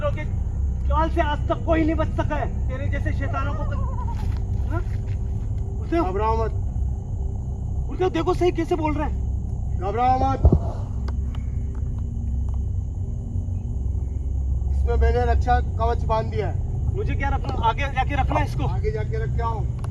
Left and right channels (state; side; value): identical; both; correlation 1.00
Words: के जाल से आज तक कोई नहीं बच सका है। तेरे जैसे शैतानों को हाँ? गुरुदेव, घबराओ मत, गुरुदेव देखो सही कैसे बोल रहे हैं। घबराओ मत। इसमें मैंने रक्षा कवच बांध दिया है। मुझे क्या रखना, आगे जाके रखना है इसको। आगे जाके रख के आओ,